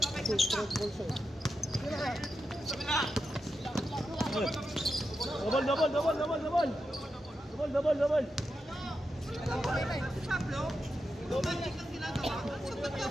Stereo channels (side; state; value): both; normal; correlation 0.88